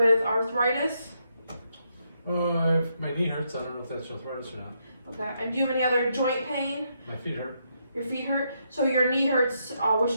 arthritis? If my knee hurts, I don't know if that's arthritis or not. Okay. And do you have any other joint pain? My feet hurt. Your feet hurt? So your knee hurts.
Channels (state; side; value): inverted; both; correlation -0.78